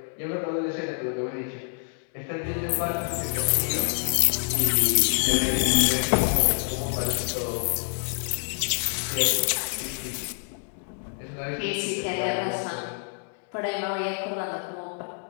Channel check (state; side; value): silent; right; 59 dB below the other